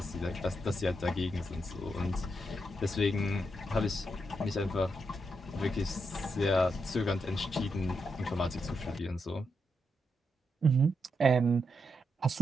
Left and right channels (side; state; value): both; normal; correlation 0.83